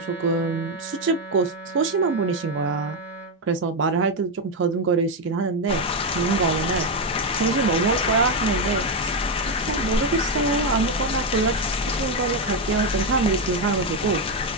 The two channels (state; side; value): normal; both; correlation 0.07